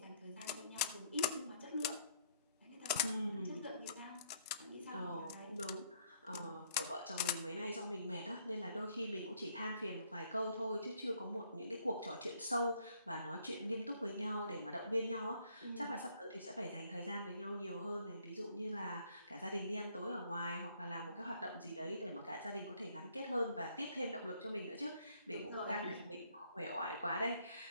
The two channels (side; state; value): both; inverted; correlation -0.67